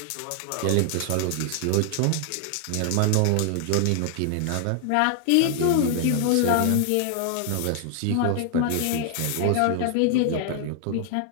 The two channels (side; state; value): both; different; correlation 0.00